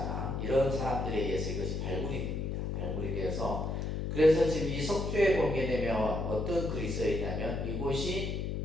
이런 사람들에 의해서 이것이 발굴이 됩니다. 발굴이 되어서 그래서 지금 이 석주에 보게 되면 어떤 글이 써 있냐면 이곳이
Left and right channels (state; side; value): noise; left; hum, 2 dB below the sound